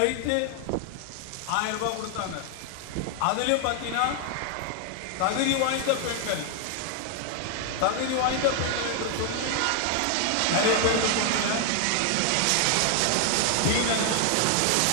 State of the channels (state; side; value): different; both; correlation 0.00